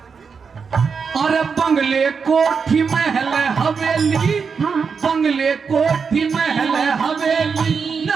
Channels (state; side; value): quieter; left; 5.7 dB